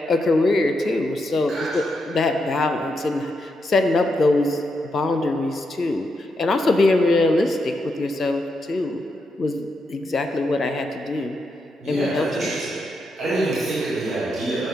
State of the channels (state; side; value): normal; both; correlation 0.83